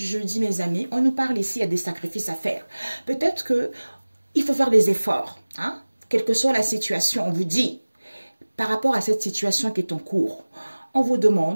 mes amis, on nous parle ici, il y a des sacrifices à faire. Peut-être qu'il faut faire des efforts. Hein? Quelle que soit la situation, on vous dit, par rapport à cette situation qui est en cours, on nous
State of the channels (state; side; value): inverted; both; correlation -1.00